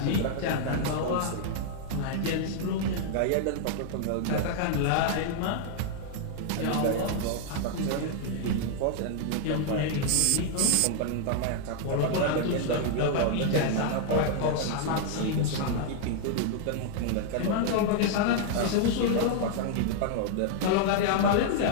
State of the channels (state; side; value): different; both; correlation -0.01